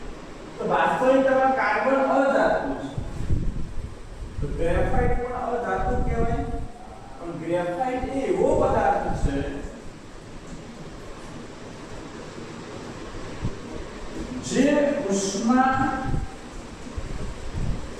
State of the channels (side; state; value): both; identical; correlation 1.00